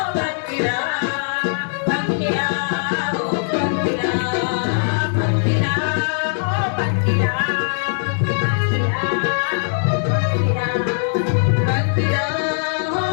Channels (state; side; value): silent; right; 66 dB below the other